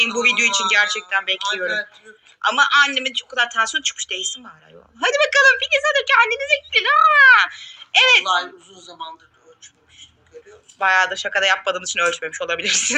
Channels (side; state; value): both; identical; correlation 1.00